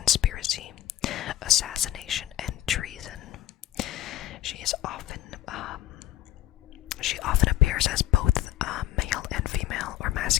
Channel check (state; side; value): quieter; right; 13.7 dB